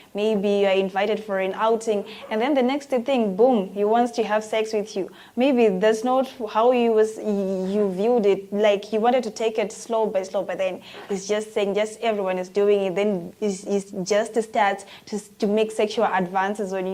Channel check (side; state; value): both; identical; correlation 1.00